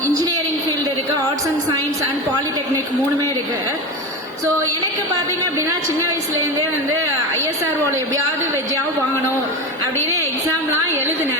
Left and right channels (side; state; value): both; normal; correlation 0.22